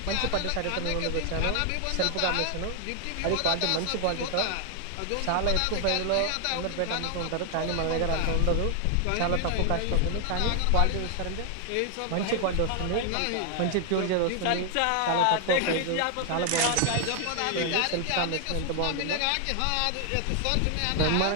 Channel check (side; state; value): both; different; correlation 0.00